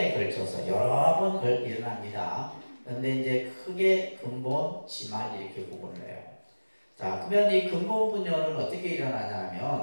걸쳐서 여러 번 일어납니다. 그런데 이제 크게 근본, 지말 이렇게 구분을 해요. 자, 그러면 이 근본 분열은 어떻게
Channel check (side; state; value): both; inverted; correlation -1.00